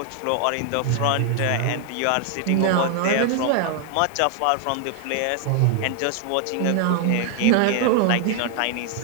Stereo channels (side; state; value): both; different; correlation 0.00